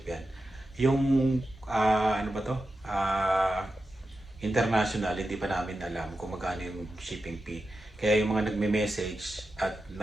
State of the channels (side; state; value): both; normal; correlation 0.90